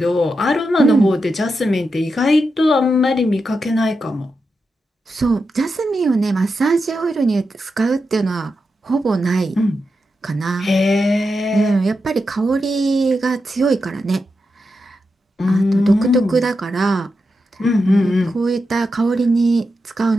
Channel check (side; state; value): both; normal; correlation 0.87